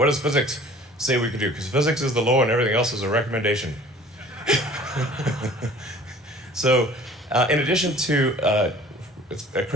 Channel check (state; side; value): normal; both; correlation 0.49